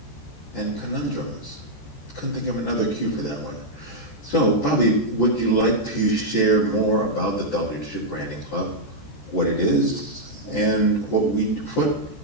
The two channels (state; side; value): late; right; 14 ms